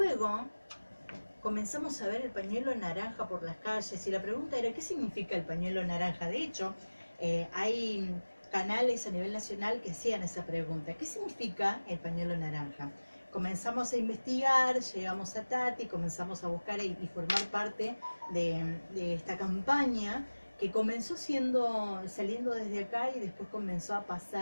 comenzamos a ver el pañuelo naranja por las calles y la pregunta era ¿qué significa el pañuelo naranja? De hecho, hay canales a nivel nacional que hacían esa pregunta, ¿qué significa el pañuelo naranja? Comenzamos a investigar, llegamos a Tati, comenzamos a buscar y formar parte de esta campaña que comenzó saliendo desde acá y después comenzó a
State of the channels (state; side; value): inverted; both; correlation -1.00